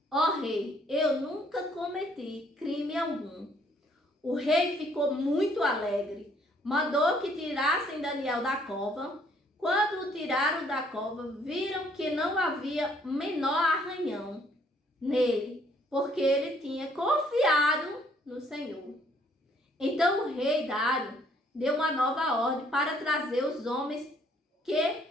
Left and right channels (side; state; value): both; normal; correlation 0.64